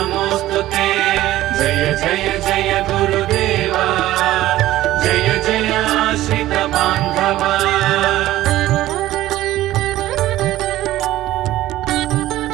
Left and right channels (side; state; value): left; quieter; 15.1 dB